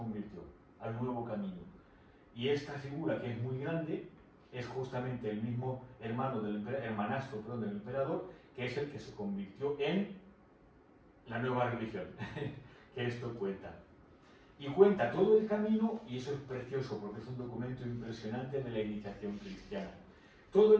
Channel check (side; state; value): both; identical; correlation 1.00